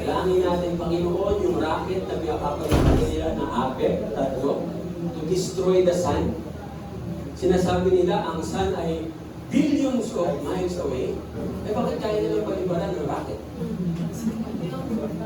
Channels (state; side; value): identical; both; correlation 1.00